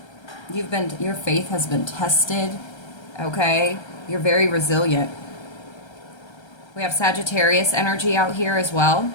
Your faith has been tested. Okay? You're very resilient. We have Sagittarius energy out here as well.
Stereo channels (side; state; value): right; late; 1.3 ms